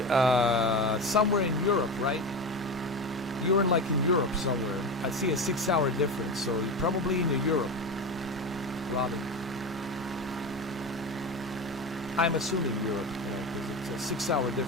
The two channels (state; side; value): normal; both; correlation 0.23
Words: somewhere in Europe, right? You're in Europe somewhere. I see a 6-hour difference, so you're probably in Europe, Robin. I'm assuming Europe, because it's a 6-hour